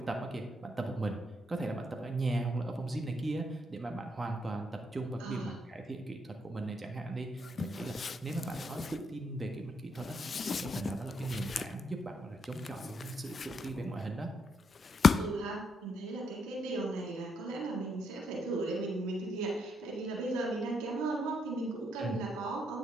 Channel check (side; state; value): both; normal; correlation 0.76